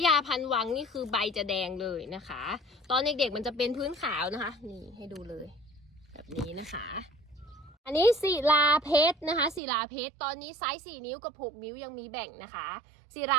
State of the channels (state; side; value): drops out; left; at 9.6 s